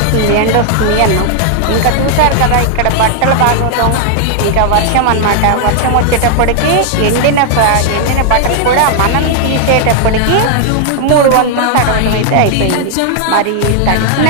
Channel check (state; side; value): different; both; correlation 0.00